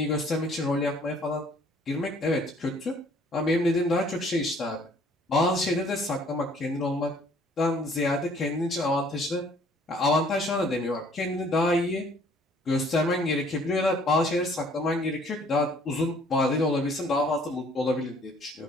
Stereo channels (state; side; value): normal; both; correlation 0.59